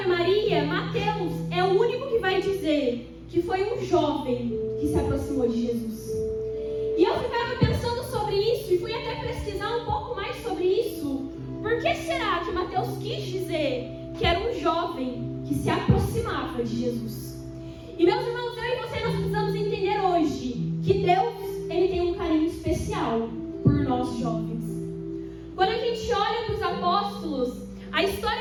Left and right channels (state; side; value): identical; both; correlation 1.00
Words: Maria, Mateus é o único que vai dizer que foi um jovem que se aproximou de Jesus. E eu ficava pensando sobre isso e fui até pesquisar um pouco mais sobre isso. Por que será que Mateus quis dizer que era um jovem que se aproximava de Jesus? E meus irmãos, eu e você, nós precisamos entender hoje que Deus, Ele tem um carinho especial por nós jovens. Quando a gente olha para os apóstolos, a